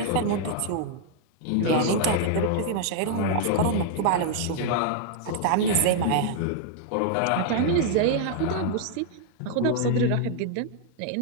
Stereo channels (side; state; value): both; different; correlation -0.01